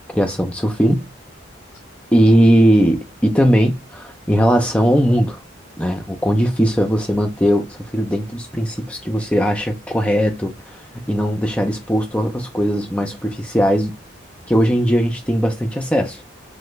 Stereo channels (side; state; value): both; normal; correlation 0.91